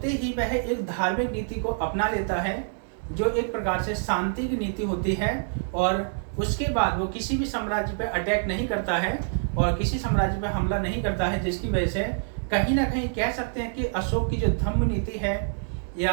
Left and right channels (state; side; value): silent; left; digital silence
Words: ही वह एक धार्मिक नीति को अपना लेता है, जो एक प्रकार से शांति की नीति होती है, और उसके बाद वो किसी भी साम्राज्य पे अटैक नहीं करता है और किसी साम्राज्य पे हमला नहीं करता है, जिसकी वजह से कहीं ना कहीं कह सकते हैं कि अशोक की जो धम्म नीति है